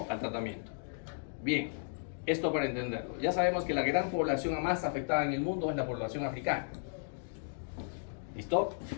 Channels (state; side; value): silent; right; digital silence